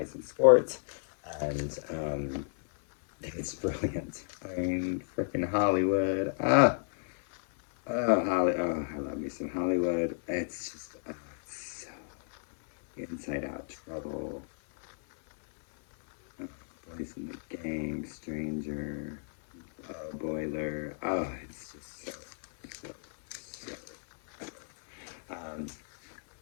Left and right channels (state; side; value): silent; right; 56 dB below the other